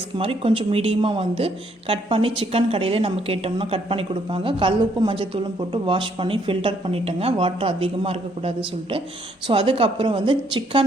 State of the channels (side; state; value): both; normal; correlation 0.69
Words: மாதிரி கொஞ்சம் மீடியமாக வந்து கட் பண்ணி சிக்கன் கடையிலே நம்ம கேட்டோம்னா கட் பண்ணி கொடுப்பாங்க. கல் உப்பு மஞ்சத்தூளும் போட்டு வாஷ் பண்ணி ஃபில்டர் பண்ணிட்டேங்க, வாட்டர் அதிகமாக இருக்கக்கூடாது சொல்லிட்டு. ஸோ அதுக்கப்புறம் வந்து